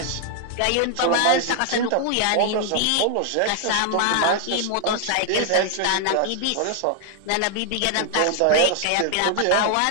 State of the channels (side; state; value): both; different; correlation 0.00